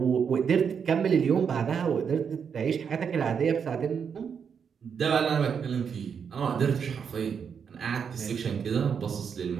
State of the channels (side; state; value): left; quieter; 6.9 dB